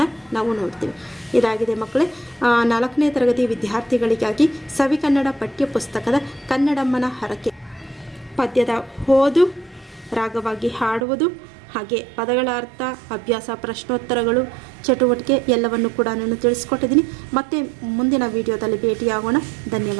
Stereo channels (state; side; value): drops out; left; at 11.1 s